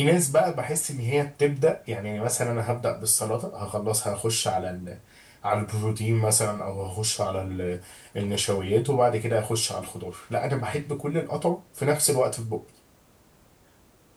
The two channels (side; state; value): both; identical; correlation 1.00